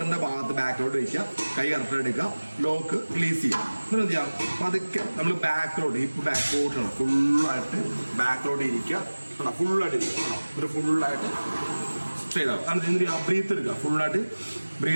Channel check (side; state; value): both; inverted; correlation -1.00